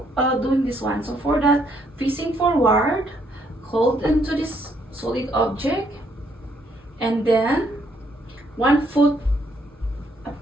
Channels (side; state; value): both; normal; correlation 0.70